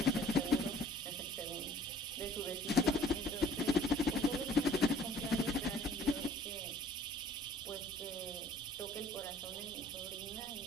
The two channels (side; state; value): both; normal; correlation 0.55